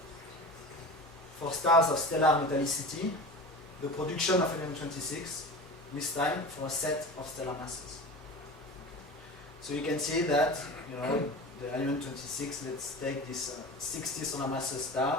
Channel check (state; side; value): normal; both; correlation 0.33